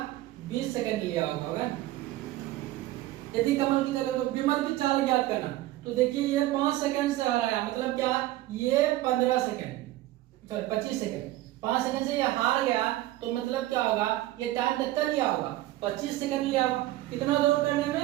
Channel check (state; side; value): quieter; left; 16.1 dB